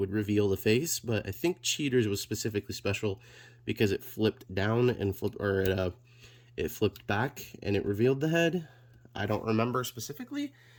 reveal the face. But I think Cheetor's was specifically special because it flipped down and it flipped back and it revealed the head. I don't remember specifically,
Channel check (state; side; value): identical; both; correlation 1.00